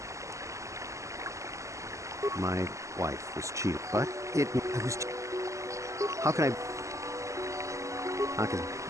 My wife was cheated, but I was... How can I... Because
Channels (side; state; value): left; late; 0.15 ms